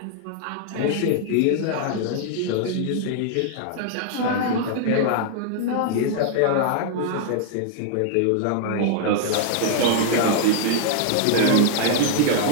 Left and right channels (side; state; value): both; different; correlation 0.00